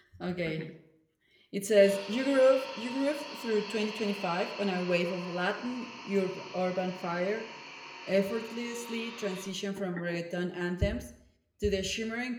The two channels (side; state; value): both; identical; correlation 1.00